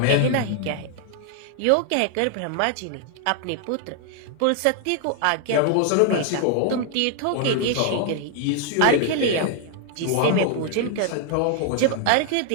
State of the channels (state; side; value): different; both; correlation 0.00